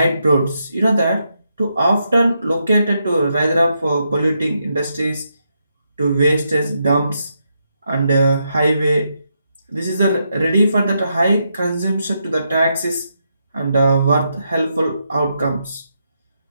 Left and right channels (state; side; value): inverted; both; correlation -0.82